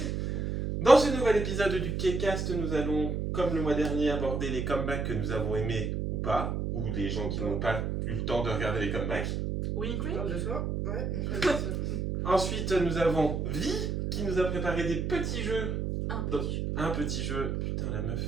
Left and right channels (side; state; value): right; noise; hum, 1 dB below the sound